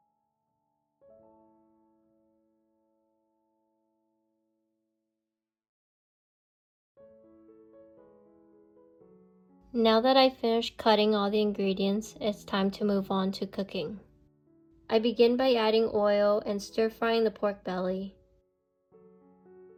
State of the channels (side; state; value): both; identical; correlation 1.00